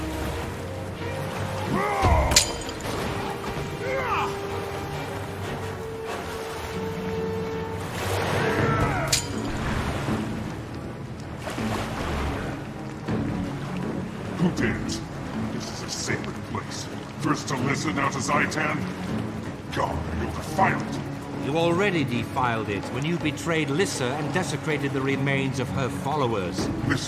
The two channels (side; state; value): both; identical; correlation 1.00